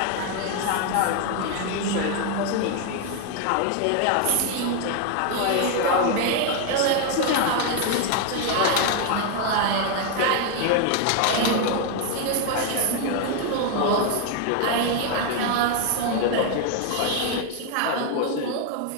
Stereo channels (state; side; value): different; both; correlation 0.01